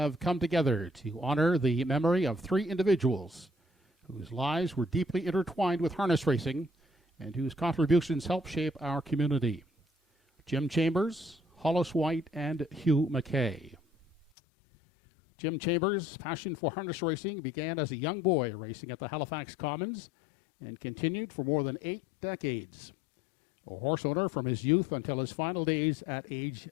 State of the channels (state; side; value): drops out; right; at 14.2 s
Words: come together to honor the memory of 3 individuals whose lives were deeply intertwined with harness racing and whose contributions helped shape our community. Jim Chambers, Hollis White, and Hugh McKay. Jim Chambers' passion for harness racing began as a young boy racing at the Halifax Commons and continued for more than 8 decades. A horse owner from his youth until his final days at age